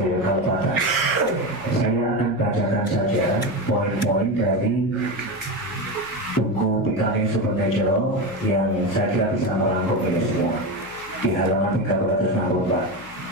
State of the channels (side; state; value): left; noise; hum, 24 dB below the sound